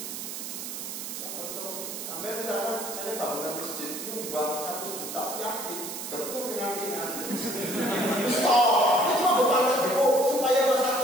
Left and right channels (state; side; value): noise; right; hiss, 7 dB below the sound